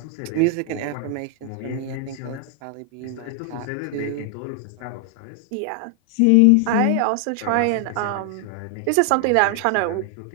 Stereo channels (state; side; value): different; both; correlation 0.00